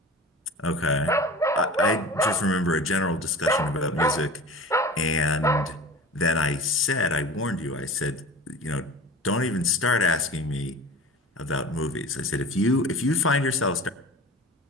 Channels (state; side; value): normal; both; correlation 0.37